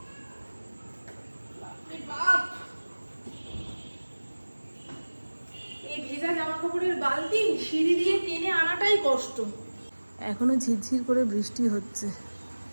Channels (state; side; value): inverted; both; correlation -1.00